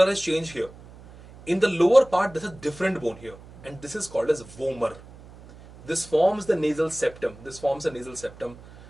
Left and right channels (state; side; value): noise; right; hum, 20 dB below the sound